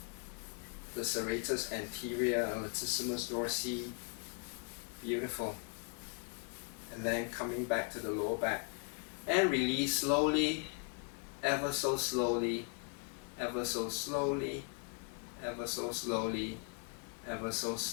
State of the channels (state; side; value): quieter; right; 39.0 dB